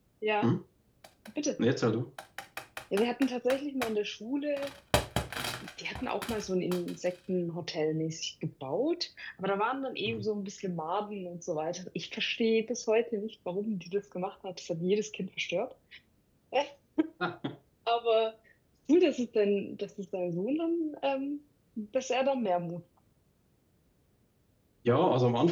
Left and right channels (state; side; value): identical; both; correlation 1.00